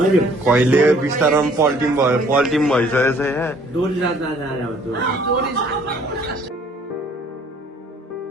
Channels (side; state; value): both; normal; correlation 0.58